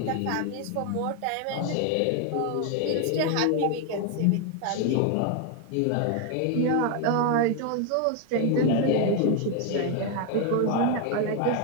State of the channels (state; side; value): different; both; correlation 0.01